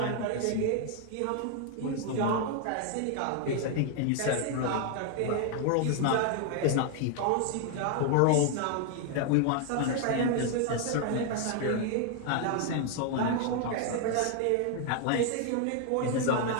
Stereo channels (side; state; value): both; different; correlation 0.00